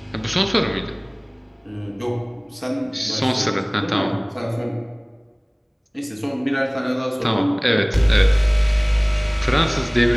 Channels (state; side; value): identical; both; correlation 1.00